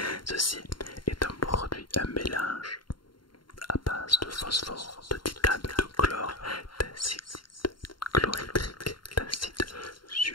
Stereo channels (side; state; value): right; late; 0.72 ms